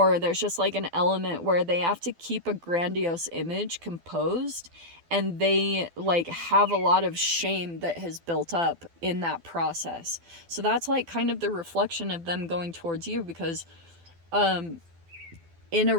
there's just, like, an element where they have to keep a grandiose image composed, and they, like, have a lot of shame that has built up in that process. So that's, like, kind of the reflection of them going towards you, because in a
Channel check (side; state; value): left; late; 12 ms